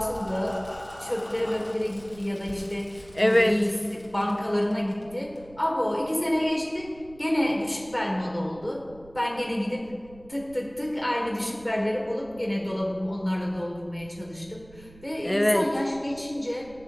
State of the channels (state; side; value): noise; right; rumble, 22 dB below the sound